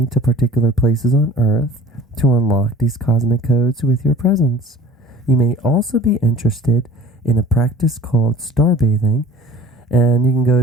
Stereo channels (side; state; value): both; normal; correlation 0.47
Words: to particular places on Earth to unlock these cosmic codes with your presence. You may also be interested in a practice called starbathing, and you can go